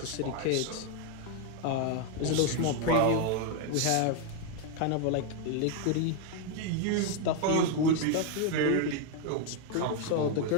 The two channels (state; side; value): different; both; correlation 0.01